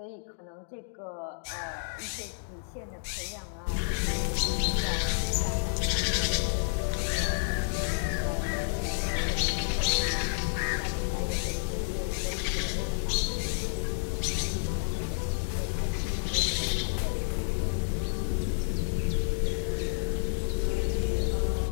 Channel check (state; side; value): silent; right; digital silence